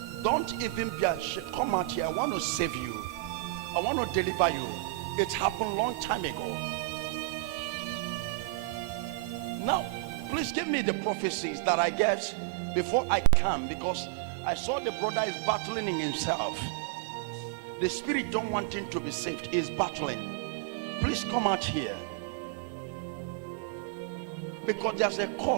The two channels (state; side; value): drops out; left; at 10.6 s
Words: Don't even be ashamed. Come out here. I want to save you. I want to deliver you. It happened a long time ago. Now, please give me the prophecies that I get before I come, because I saw the brother is battling in himself. The spirit don't want him to be saved. He's battling. Please come out here. Because there's a